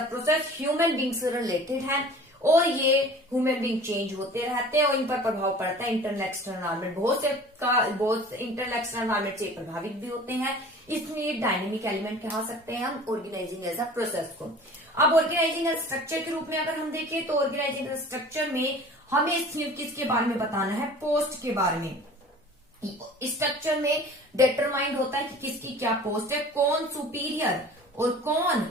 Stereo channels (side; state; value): both; normal; correlation 0.44